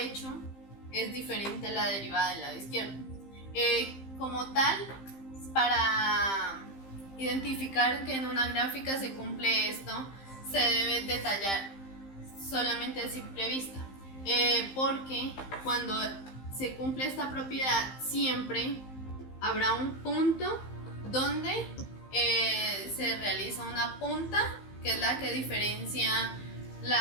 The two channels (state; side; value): late; right; 15 ms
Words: es diferente a la derivada del lado izquierdo. Como tal, para identificar que en una gráfica se cumple esto, se debe detallar solamente a simple vista, porque cuando se cumple esta propiedad, siempre habrá un punto donde se realiza una punta, que es la que diferencia